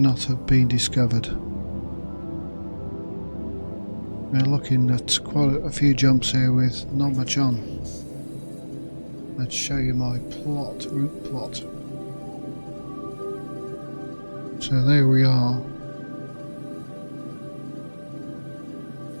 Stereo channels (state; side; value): inverted; both; correlation -1.00